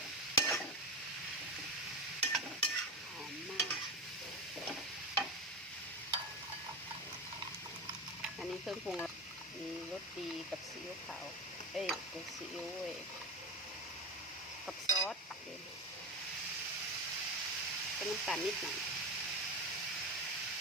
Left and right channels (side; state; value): both; normal; correlation 0.20